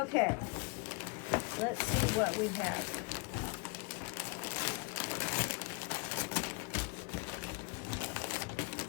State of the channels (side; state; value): right; quieter; 30.7 dB